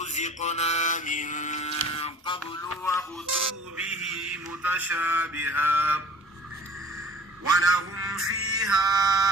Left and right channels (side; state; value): both; normal; correlation 0.47